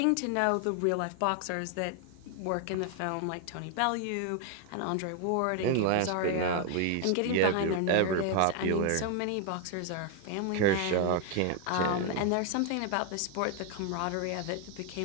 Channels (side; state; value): both; different; correlation 0.00